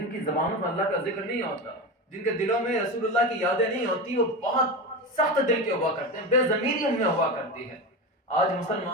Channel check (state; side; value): normal; both; correlation 0.22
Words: کی زبانوں پر اللہ کا ذکر نہیں ہوتا، جن کے دلوں میں رسول اللہ کی یادیں نہیں ہوتی، وہ بہت سخت دل کے ہوا کرتے ہیں، بے ضمیری ان میں ہوا کرتی ہے۔ آج